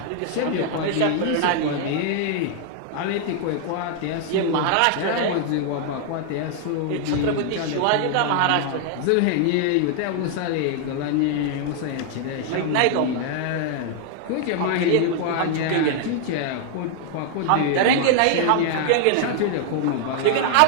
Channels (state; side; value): different; both; correlation 0.00